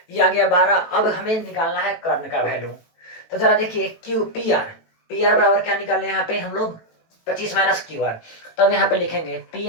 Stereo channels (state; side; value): late; right; 18 ms